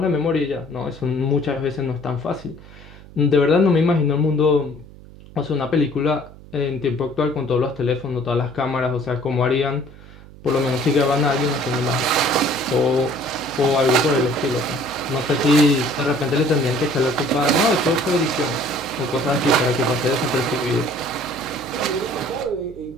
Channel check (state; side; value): noise; right; hum, 19 dB below the sound